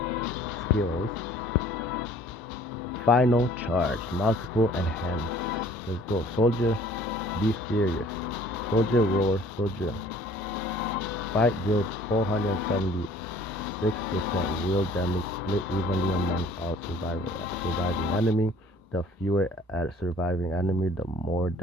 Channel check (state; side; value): normal; both; correlation 0.53